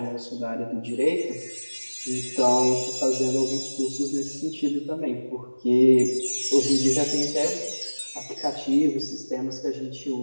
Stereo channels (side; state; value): both; inverted; correlation -1.00